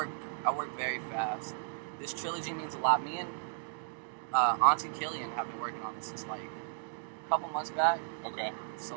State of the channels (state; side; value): silent; left; digital silence